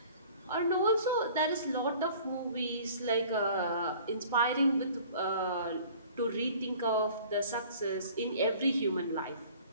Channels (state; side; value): inverted; both; correlation -0.49